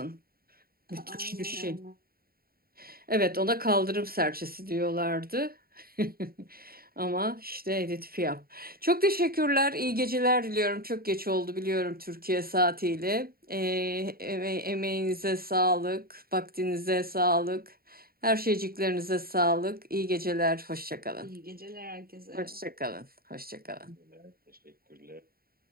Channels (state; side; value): late; left; 0.43 ms